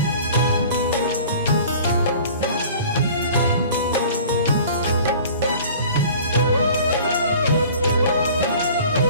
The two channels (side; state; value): both; inverted; correlation -0.45